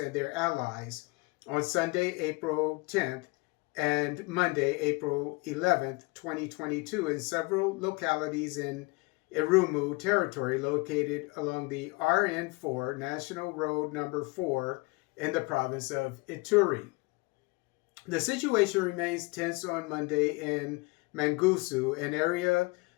their allies on Sunday, April 10th and Monday, April 11th, 2022 in several localities in Irumu territory located along the RN4 National Road number 4 in the province of Ituri. The situation remains tense on Monday in Mangusu, an area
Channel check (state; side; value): quieter; right; 26.2 dB